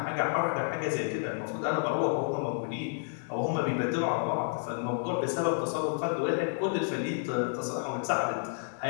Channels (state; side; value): silent; right; digital silence